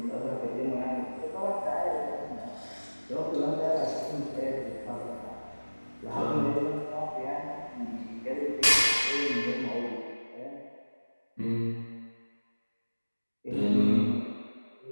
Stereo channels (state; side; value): inverted; both; correlation -1.00